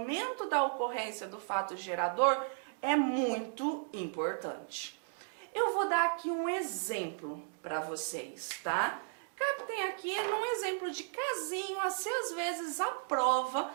da ocorrência do fato gerador é muito importante. Eu vou dar aqui um exemplo para vocês, tá? Captem aqui num exemplo de casinho, assim às vezes a prova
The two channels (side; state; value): left; silent; digital silence